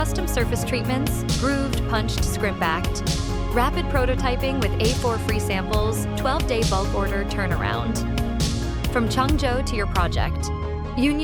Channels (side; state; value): both; identical; correlation 1.00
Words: surface treatments, grooved, punched, scrimp-backed, rapid prototyping with A4 free samples, 12-day bulk order turnaround. From Changzhou to your project,